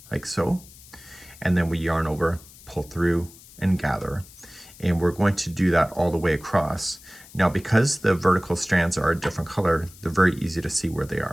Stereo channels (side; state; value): left; noise; hiss, 21 dB below the sound